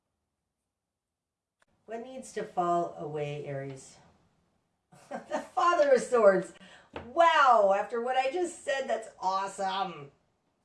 What needs to fall away, Aries? The Father of Swords. Wow, after what I just said, that's awesome.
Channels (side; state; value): both; identical; correlation 1.00